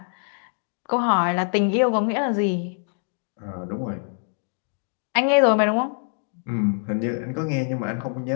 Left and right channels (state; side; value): silent; right; 60 dB below the other